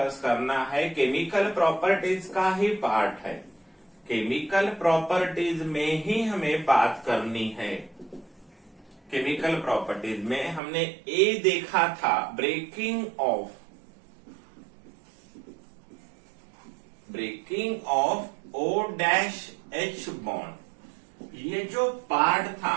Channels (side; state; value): left; drops out; at 10.6 s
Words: करना है केमिकल प्रॉपर्टीज का ही पार्ट है, केमिकल प्रॉपर्टीज में ही हमें बात करनी है। केमिकल प्रॉपर्टीज में हमने ए देखा था, ब्रेकिंग ऑफ OH बॉन्ड। ये जो पार्ट था